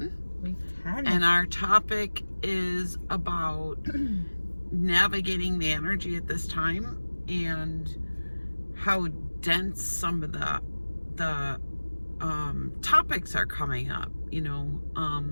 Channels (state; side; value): inverted; both; correlation -1.00